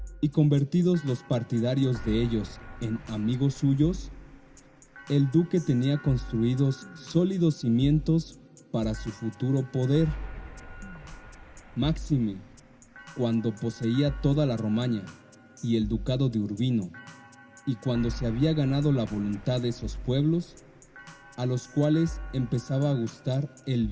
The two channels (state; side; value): identical; both; correlation 1.00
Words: y convertidos los partidarios de ellos en amigos suyos, el duque tenía construidos sólidos cimientos para su futuro poder. Máxime, cuando poseía toda la Romaña y el ducado de Urbino, y cuando se había ganado la voluntad de esos pueblos, a los cuales empezaba a gustar el